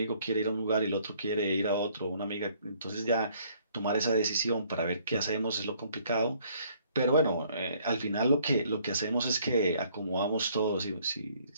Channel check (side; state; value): both; inverted; correlation -0.62